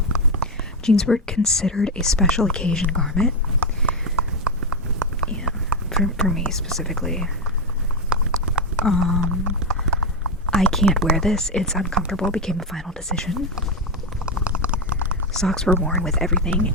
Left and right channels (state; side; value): normal; both; correlation 0.08